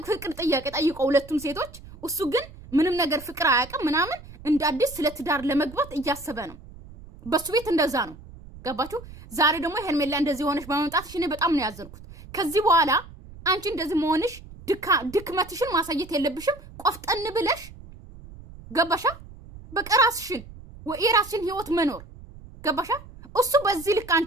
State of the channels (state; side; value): noise; right; rumble, 18 dB below the sound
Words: ፍቅር ጥያቄ ጠይቀው ሁለቱም ሴቶች እሱ ግን ምንም ነገር ፍቅር አያውቅም ምናምን እንደ አዲስ ስለ ትዳር ለመግባት እያሰበ ነው በሱ ቤት እንደዛ ነው ገባችሁ ዛሬ ደግሞ ሄርሜላ እንደዚህ ሆነሽ በመምጣትሽ እኔ በጣም ነው ያዘንኩት ከዚህ በኋላ አንቺ እንደዚህ መሆንሽ ድክመትሽን ማሳየት የለብሽም ቆፍጠን ብለሽ ገባሻ በቃ ራስሽን የራስሽን ህይወት መኖር ገባሻ እሱ በዚህ ልክ